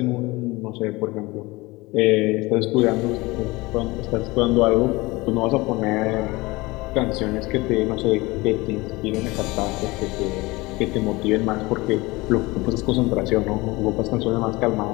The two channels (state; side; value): quieter; right; 22.3 dB